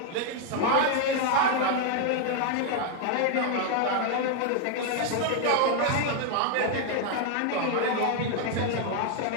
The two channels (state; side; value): different; both; correlation 0.00